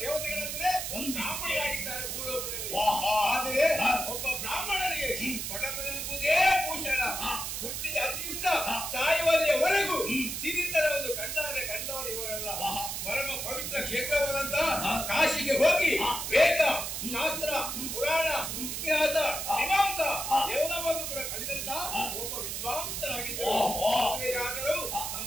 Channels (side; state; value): right; noise; hiss, 4 dB below the sound